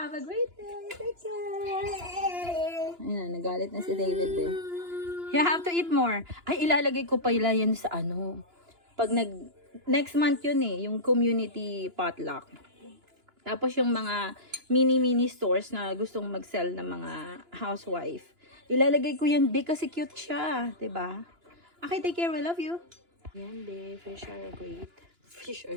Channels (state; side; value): late; left; 2.9 ms